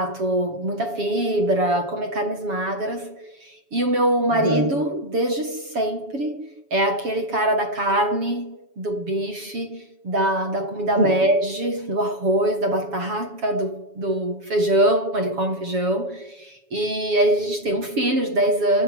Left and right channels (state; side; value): late; left; 7.2 ms